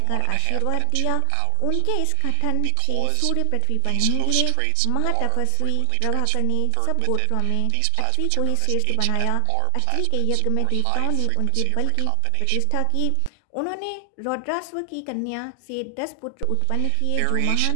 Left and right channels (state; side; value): different; both; correlation 0.00